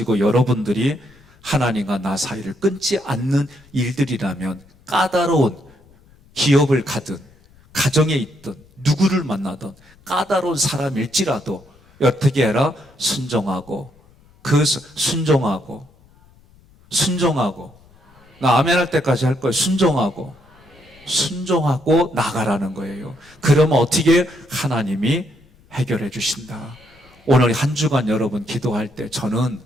여러분들이 하나님과 나 사이를 끊지 않는 일들이라면 까다로운 기업을 가든 가정에 있든 누구를 만나든 까다로운 사람일지라도 어떻게 해라? 순종하고 나 아멘 할 때까지 할 거예요. 순종하고 나가라는 거예요. 그러면 어떻게 하나님이 해결해 주신다. 오늘 한 주간 여러분 기도할 때 저는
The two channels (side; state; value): left; noise; rumble, 29 dB below the sound